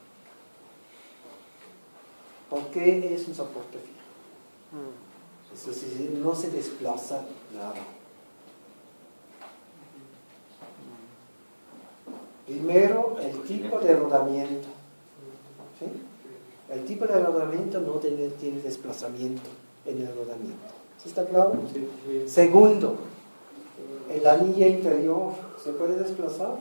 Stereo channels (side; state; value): both; inverted; correlation -1.00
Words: ¿Por qué es un soporte fijo? Es decir, no se desplaza nada. Primero, el tipo de rodamiento. ¿Sí? El tipo de rodamiento no tiene desplazamiento en el rodamiento. ¿Sí está claro? Sí. Segundo, el anillo interior, ¿se puede desplazar?